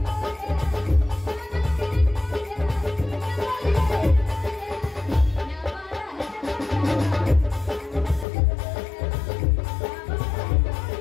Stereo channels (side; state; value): right; drops out; at 8.2 s